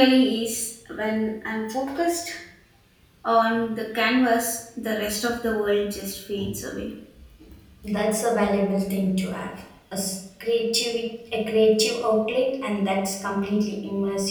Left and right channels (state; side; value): identical; both; correlation 1.00